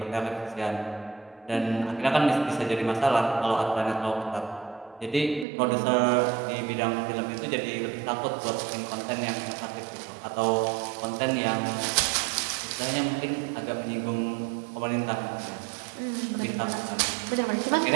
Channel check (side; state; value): left; drops out; at 5.5 s